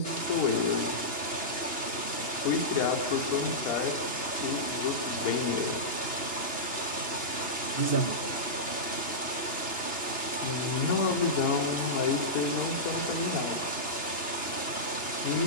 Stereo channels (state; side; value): late; right; 2.9 ms